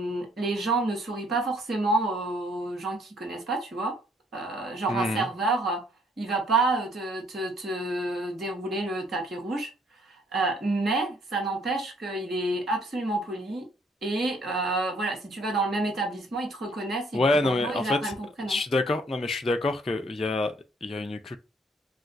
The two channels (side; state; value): both; normal; correlation 0.64